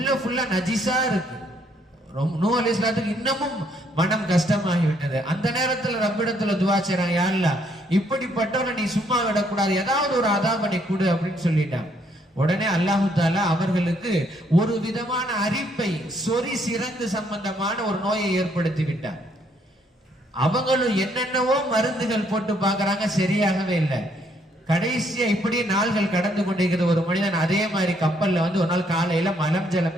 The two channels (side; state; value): both; normal; correlation 0.69